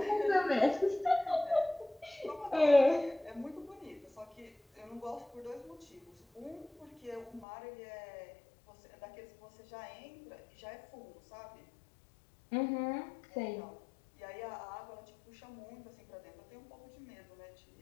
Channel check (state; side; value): drops out; right; at 7.5 s